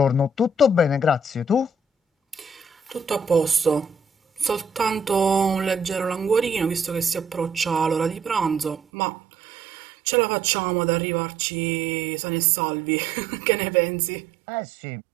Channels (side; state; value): left; drops out; at 8.8 s